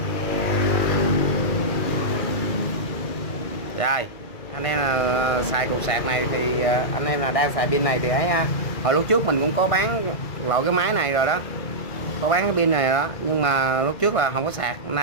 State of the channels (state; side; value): late; right; 1.5 ms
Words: Rồi anh em là xài cục sạc này thì anh em là đang xài pin này thì ấy ha. Hồi lúc trước mình cũng có bán loại cái máy này rồi đó, có bán cái pin này đó, nhưng mà lúc trước là không có sạc, hôm